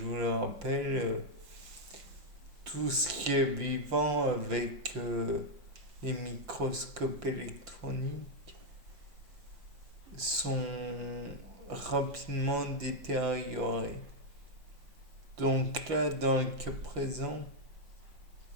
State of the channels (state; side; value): late; left; 5.9 ms